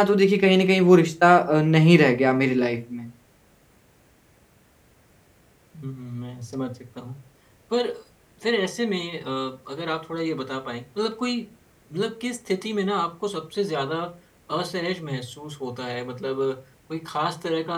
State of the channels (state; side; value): identical; both; correlation 1.00